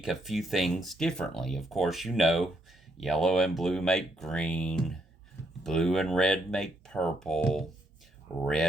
a few things differently. Of course, yellow and blue make green, blue and red make purple,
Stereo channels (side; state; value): both; normal; correlation 0.76